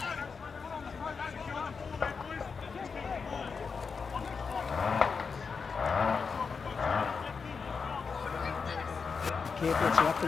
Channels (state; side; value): quieter; right; 5.4 dB